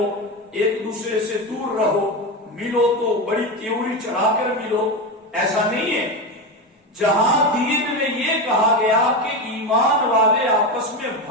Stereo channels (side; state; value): both; normal; correlation 0.17